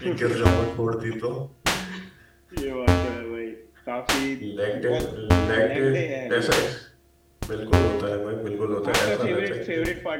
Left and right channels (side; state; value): both; identical; correlation 1.00